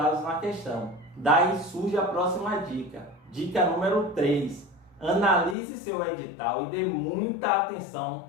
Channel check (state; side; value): drops out; right; at 5.6 s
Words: na questão. Daí surge a próxima dica. Dica número 3. Analise seu edital e dê muita atenção